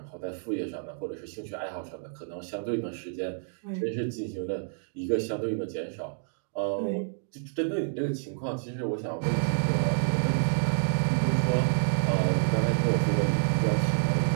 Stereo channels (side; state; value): left; silent; digital silence